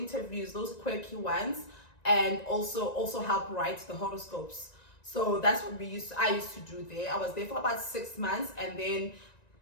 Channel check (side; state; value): right; late; 1.9 ms